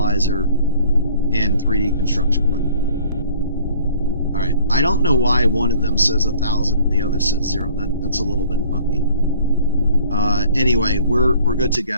and 3D construction printer. Alright, I don't know why one of them says 1,000 and the other says 0. That's a little bit funky. Anyway, we're good to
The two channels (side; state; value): both; inverted; correlation -0.54